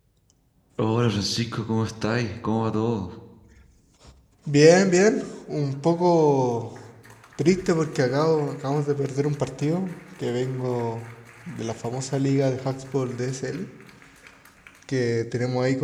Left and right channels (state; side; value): identical; both; correlation 1.00